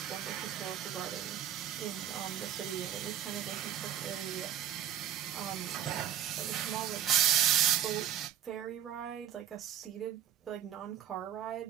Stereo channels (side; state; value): left; quieter; 10.4 dB